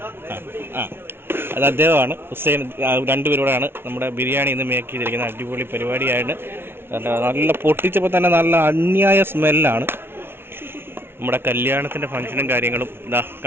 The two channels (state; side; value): late; left; 0.11 ms